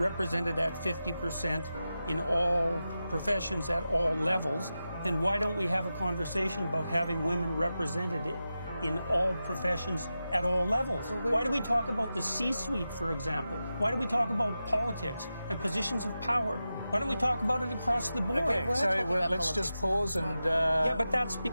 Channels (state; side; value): inverted; both; correlation -0.92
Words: at 50% in all professions at all levels, then why don't we have a conversation about having women represented in all professions at all levels? Why do we talk about the C-suite, for example? Why do we talk about politics and positions of power? Why don't we talk about it across the board? Okay, sorry, let's just pause and... Yeah, but that's